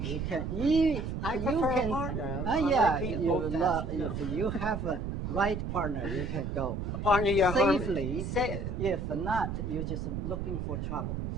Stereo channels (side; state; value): right; noise; rumble, 4 dB below the sound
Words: can. I prefer a partner. If you have a right partner, you can go partner safely. If not, you're just looking for trouble.